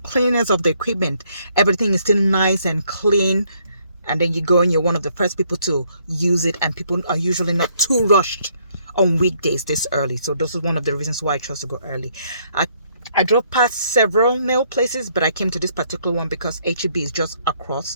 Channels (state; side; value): inverted; both; correlation -0.68